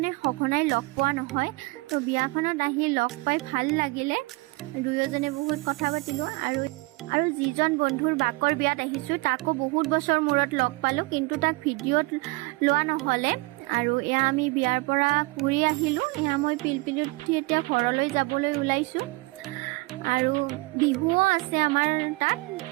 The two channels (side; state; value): left; quieter; 24.8 dB